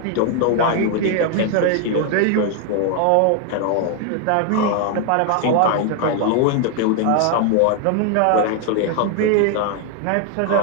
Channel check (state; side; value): different; both; correlation 0.00